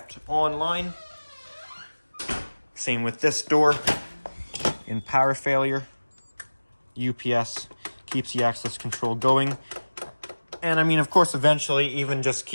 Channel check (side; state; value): both; inverted; correlation -1.00